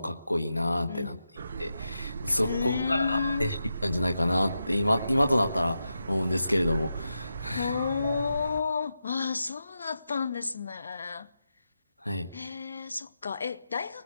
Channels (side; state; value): both; inverted; correlation -0.88